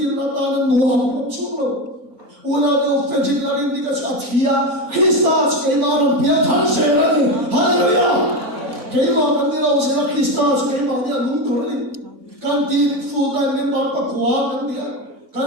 nó ta nó luồng ông chúa luồng. Una do fetish larin di kas athia Christus ke naam pia than se rani hallelujah ke ma mandira se na Christus ke ma dia lung thori kan tin full time member pa kwa kan dia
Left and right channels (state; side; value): normal; both; correlation 0.17